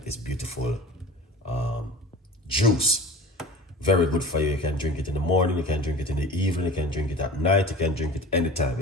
this beautiful juice. Very good for you. You can drink it in the morning, you can drink it in the evening, you can drink it at night, you can drink it anytime.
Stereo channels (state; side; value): normal; both; correlation 0.38